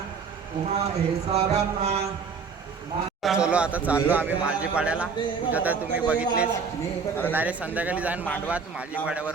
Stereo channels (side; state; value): left; quieter; 5.5 dB